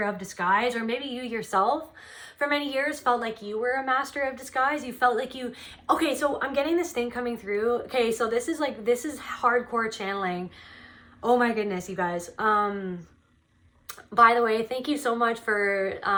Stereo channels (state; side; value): identical; both; correlation 1.00